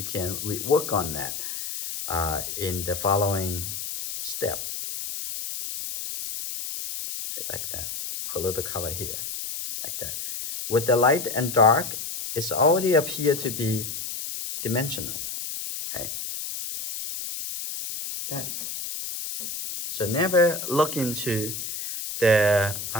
can rework on that in the following step. Like that. Put a little color here, like that. With the light and dark, it's already appear to be dimensional. Okay. That. So never look into the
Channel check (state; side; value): noise; left; hiss, 6 dB below the sound